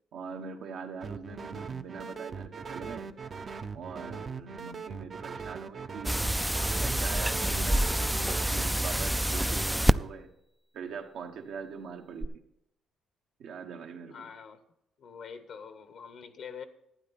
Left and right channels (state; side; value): normal; both; correlation 0.95